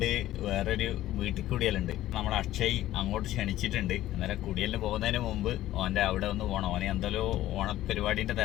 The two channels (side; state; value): right; quieter; 14.3 dB